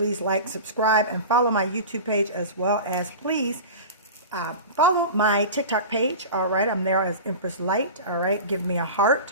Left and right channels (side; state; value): both; inverted; correlation -0.31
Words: like, subscribe, and follow my YouTube page, as well as please follow my TikTok page. All right, I'm there as Empress Light. All right, give me a